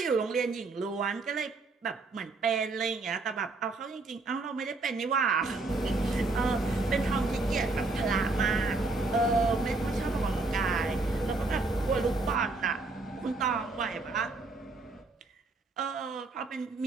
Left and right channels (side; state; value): left; quieter; 3.5 dB